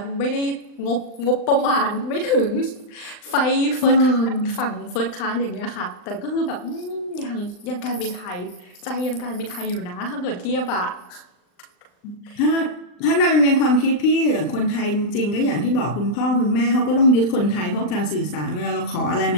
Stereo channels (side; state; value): right; late; 39 ms